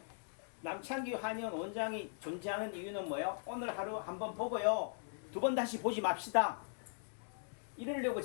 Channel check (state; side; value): silent; right; digital silence